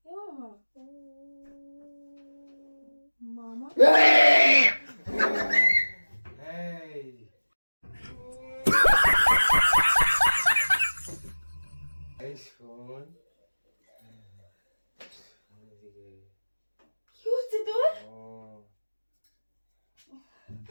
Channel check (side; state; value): both; inverted; correlation -1.00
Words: মামা, এই শোন, কি হচ্ছে তোর?